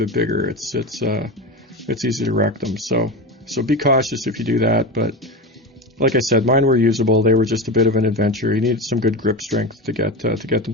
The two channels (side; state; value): both; normal; correlation 0.23